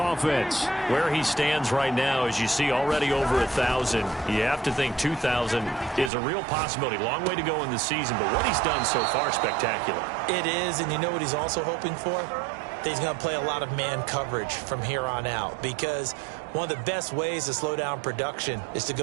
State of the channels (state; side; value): drops out; left; at 6.1 s